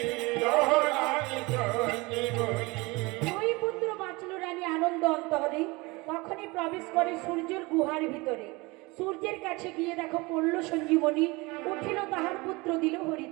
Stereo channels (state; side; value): quieter; left; 24.4 dB